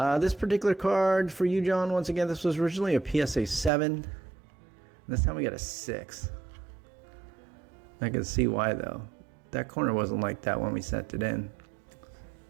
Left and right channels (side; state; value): left; drops out; at 3.7 s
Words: This particular card for you, John, once again, this was originally a PSA 7. This time we got a 6. I can see why, though. That corner wasn't like that when we sent it in.